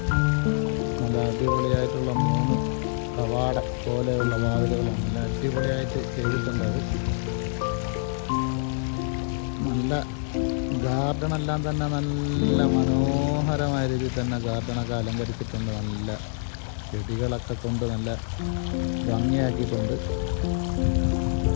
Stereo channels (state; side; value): silent; right; 61 dB below the other